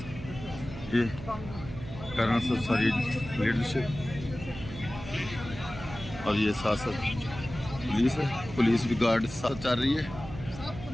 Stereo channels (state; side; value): noise; right; hum, 12 dB below the sound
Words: ये करना सर सारी लीडरशिप, और ये साथ साथ पुलिस है, पुलिस भी गार्ड साथ चल रही है,